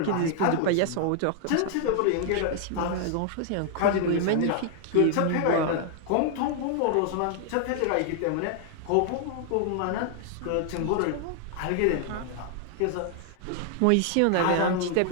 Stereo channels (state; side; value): different; both; correlation 0.00